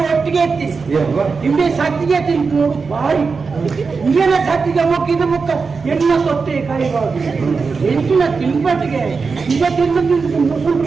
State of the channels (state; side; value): quieter; left; 4.8 dB